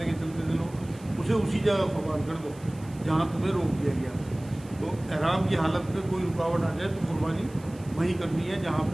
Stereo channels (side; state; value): right; noise; hiss, 24 dB below the sound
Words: کے چلتے تھے لوگ, اسے اسی جگہ قربان کر دو جہاں تمہیں روک دیا گیا. تو احرام کی حالت میں کوئی رکاوٹ آ جائے تو قربانی وہیں کرنی ہے جہاں